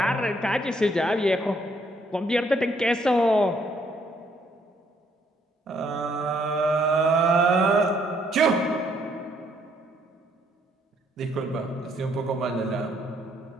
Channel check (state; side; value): normal; both; correlation 0.69